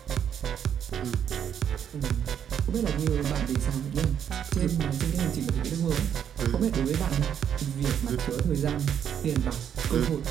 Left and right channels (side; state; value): left; quieter; 8.8 dB